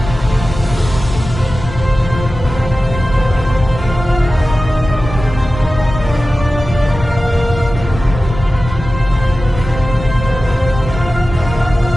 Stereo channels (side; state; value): left; noise; rumble, 10 dB below the sound